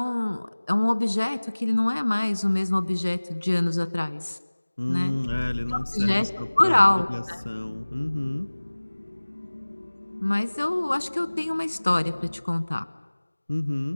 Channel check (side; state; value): both; inverted; correlation -1.00